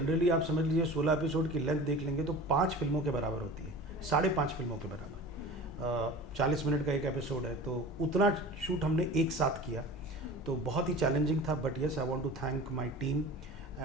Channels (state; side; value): normal; both; correlation 0.37